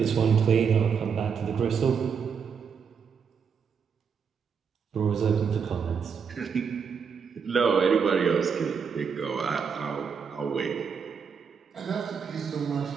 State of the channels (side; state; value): left; quieter; 6.4 dB